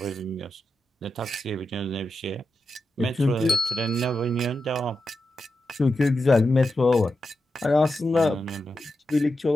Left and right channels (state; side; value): normal; both; correlation 0.89